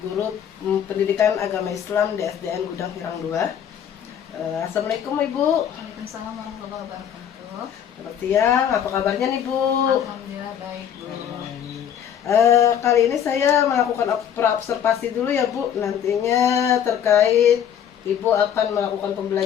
guru pendidikan agama Islam di SDN Gudang Hirang 2. Assalamualaikum Ibu. Waalaikumsalam warahmatullahi wabarakatuh. Selamat siang, apa kabarnya nih Bu? Alhamdulillah baik Bu. Kali ini saya melakukan pra-observasi dulu ya Bu. Nantinya terkait Ibu akan melakukan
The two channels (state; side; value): quieter; right; 9.1 dB